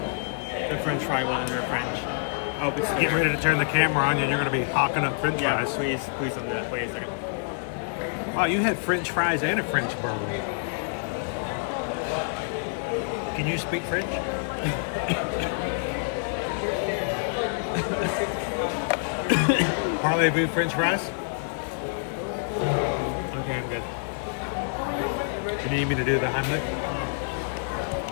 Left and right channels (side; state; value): right; silent; digital silence